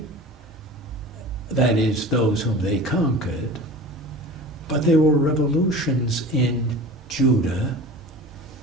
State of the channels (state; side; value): normal; both; correlation 0.37